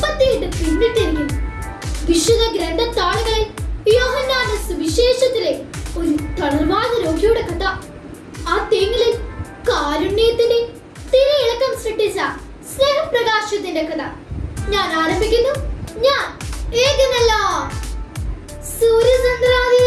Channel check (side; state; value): both; identical; correlation 1.00